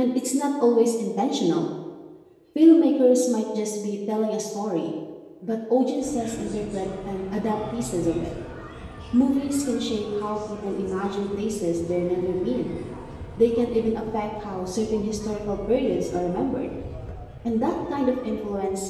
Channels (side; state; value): both; identical; correlation 1.00